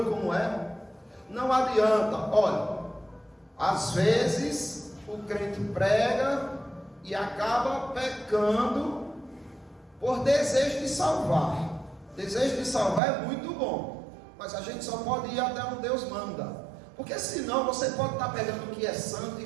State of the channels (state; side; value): drops out; left; at 13.0 s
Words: como é? Não adianta. Olha, às vezes o crente prega e acaba pecando por desejo de salvar. Desejo de salvar é muito bom, mas a gente só pode ir até onde Deus manda, porque senão você pode estar pegando o que é santo